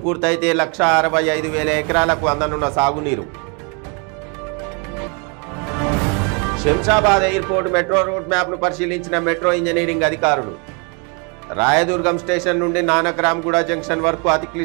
పూర్తయితే 1,65,000 ఎకరాలకు అందనున్న సాగునీరు శంషాబాద్ ఎయిర్పోర్ట్ మెట్రో రూట్ మ్యాప్ను పరిశీలించిన మెట్రో ఇంజనీరింగ్ అధికారులు రాయదుర్గం స్టేషన్ నుండి నానక్రామ్గూడ జంక్షన్ వరకు అతి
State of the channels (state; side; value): quieter; left; 34.6 dB